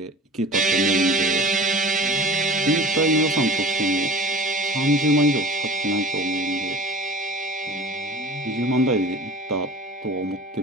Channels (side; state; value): both; normal; correlation 0.39